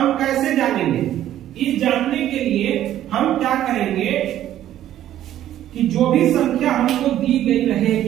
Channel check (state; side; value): quieter; left; 12.2 dB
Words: कैसे जानेंगे? इस जानने के लिए हम क्या करेंगे कि जो भी संख्या हमको दी गई